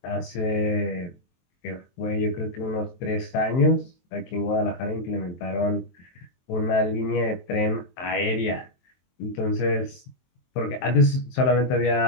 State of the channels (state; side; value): late; right; 23 ms